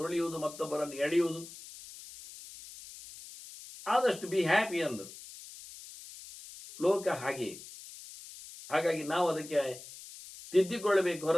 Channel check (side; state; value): left; noise; hiss, 16 dB below the sound